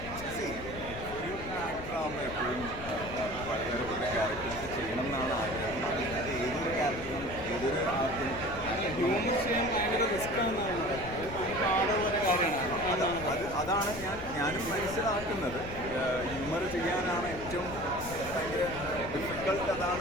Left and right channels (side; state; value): left; noise; rumble, 12 dB below the sound